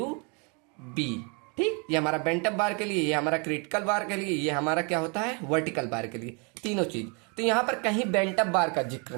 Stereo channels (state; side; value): quieter; left; 33.6 dB